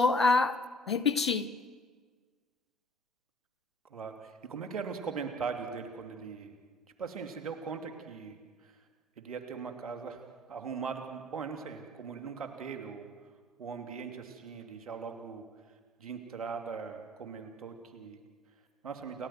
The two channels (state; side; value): normal; both; correlation 0.53